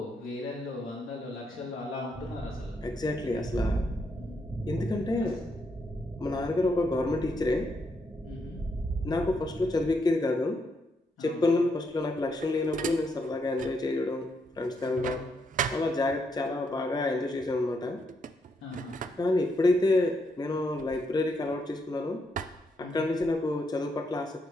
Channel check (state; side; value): normal; both; correlation 0.78